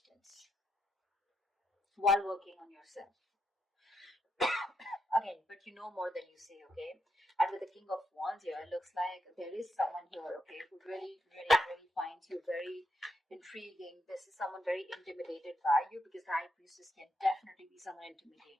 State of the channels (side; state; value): both; normal; correlation 0.81